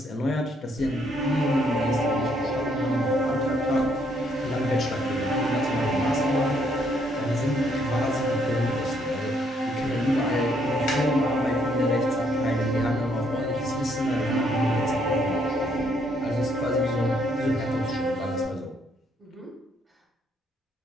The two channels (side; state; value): both; normal; correlation 0.70